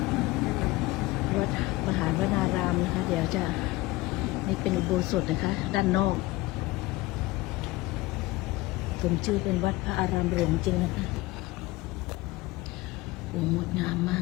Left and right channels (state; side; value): quieter; right; 19.7 dB